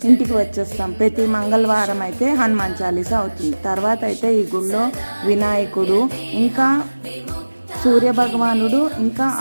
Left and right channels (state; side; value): inverted; both; correlation -1.00